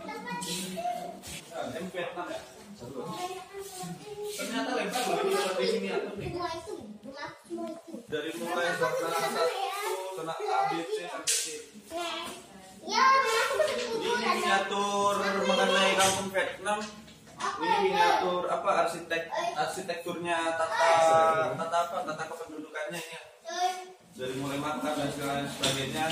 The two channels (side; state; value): both; identical; correlation 1.00